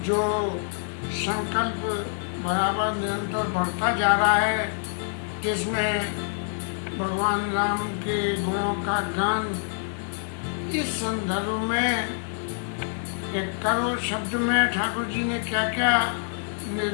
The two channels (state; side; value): silent; right; digital silence